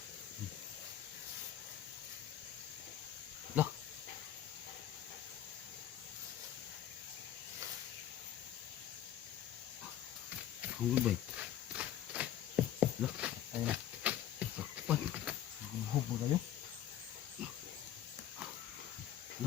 Lah. Kahon bay. Lah. Ayun na. Kapan? Gubob mo kayo.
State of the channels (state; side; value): quieter; right; 11.1 dB